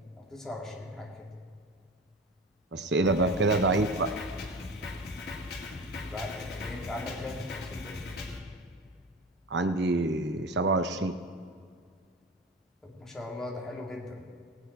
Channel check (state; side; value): normal; both; correlation 0.32